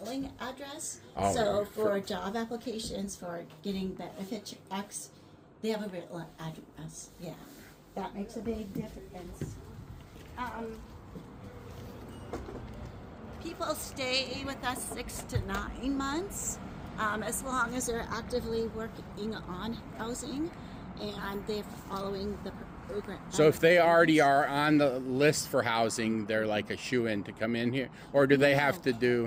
address. Oh, So for- for job applications, for getting benefit checks, they have a real address. Yeah, that makes a big difference. People stay with us 6 to 9 months, as long as they're actively working on housing and they're following the program. So if they already are on the list for housing, they're like a shoe-in to come in here, or do they have to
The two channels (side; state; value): both; identical; correlation 1.00